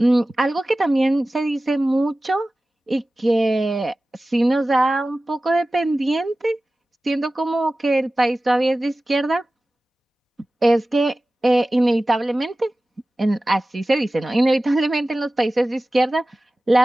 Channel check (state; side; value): normal; both; correlation 0.96